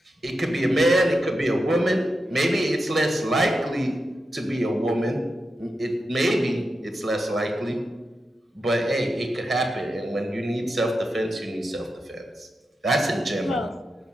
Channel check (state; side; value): normal; both; correlation 0.89